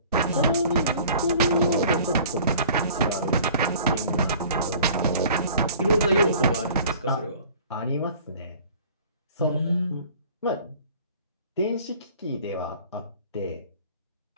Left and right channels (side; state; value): both; inverted; correlation -0.49